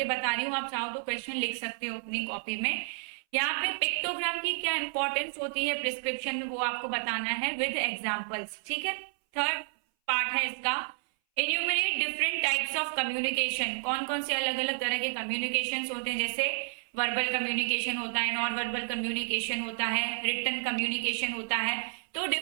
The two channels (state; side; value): silent; left; 57 dB below the other